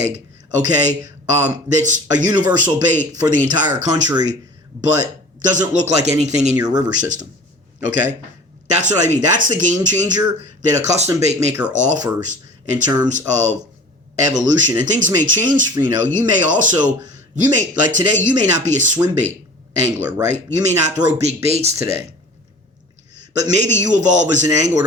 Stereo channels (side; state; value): both; normal; correlation 0.42